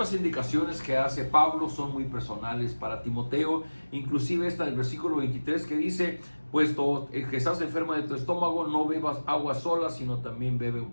indicaciones que hace Pablo son muy personales para Timoteo, inclusive esta del versículo 23 que dice, puesto que estás enfermo de tu estómago, no bebas agua sola, sino también bebe un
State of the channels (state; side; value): inverted; both; correlation -1.00